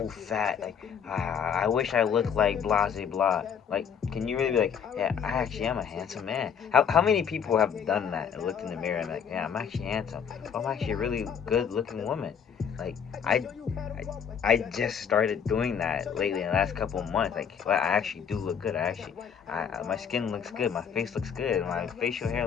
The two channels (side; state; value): right; quieter; 7.5 dB